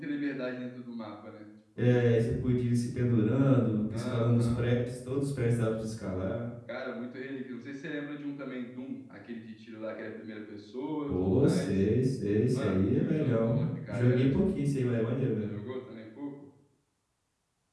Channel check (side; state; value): both; identical; correlation 1.00